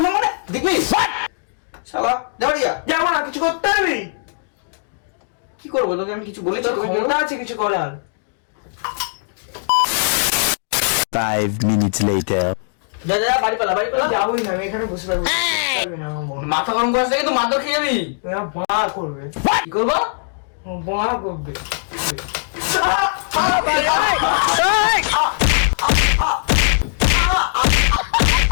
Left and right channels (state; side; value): silent; right; digital silence